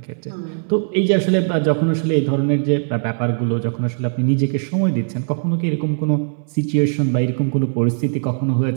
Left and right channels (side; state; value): left; silent; digital silence